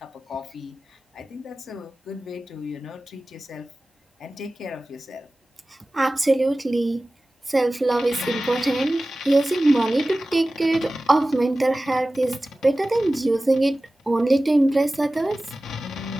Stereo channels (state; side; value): normal; both; correlation 0.97